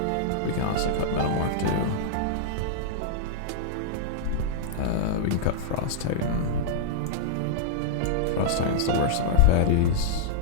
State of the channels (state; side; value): different; both; correlation -0.02